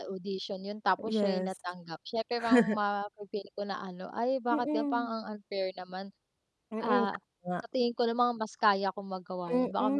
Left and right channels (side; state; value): both; identical; correlation 1.00